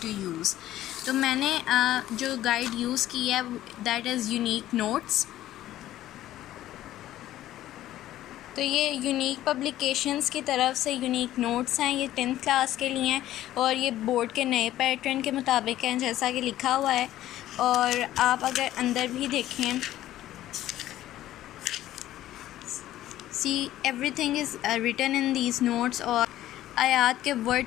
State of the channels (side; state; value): right; quieter; 13.7 dB